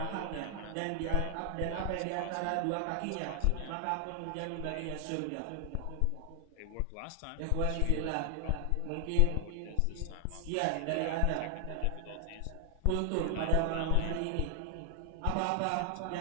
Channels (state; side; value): different; both; correlation 0.00